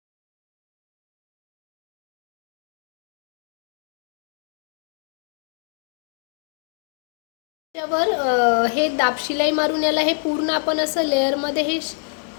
त्यावर हे दाबशिलाई मारून याला हे पूर्ण आपण असं लेअरमध्ये हे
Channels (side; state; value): right; silent; 61 dB below the other